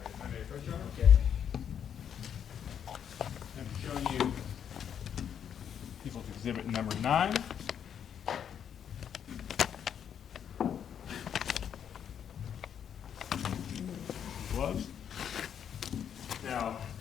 number 9. Gloves. Now,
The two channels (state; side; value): quieter; right; 8.6 dB